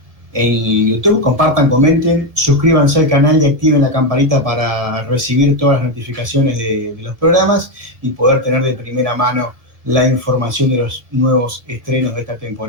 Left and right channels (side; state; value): left; late; 1.8 ms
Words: En YouTube, compartan, comenten, suscríbanse al canal y activen la campanita para recibir todas las notificaciones de los programas y poder tener de primera mano la información de los nuevos estrenos de esta